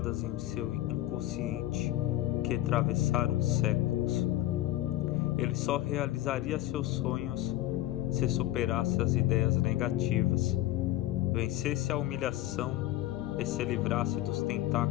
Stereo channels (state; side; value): quieter; right; 14.9 dB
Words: em seu inconsciente, que atravessaram séculos. Ele só realizaria seus sonhos se superasse as ideias negativas, vencesse a humilhação e se livrasse dos